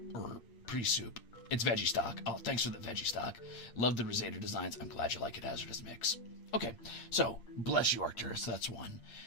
or pre-soup. It's veggie stock. Oh, thanks for the veggie stock. Love the Ruzader designs. I'm glad you like it. Hazardous mix. Okay, so bless you, Arcturus. That's 1.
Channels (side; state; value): right; late; 8.6 ms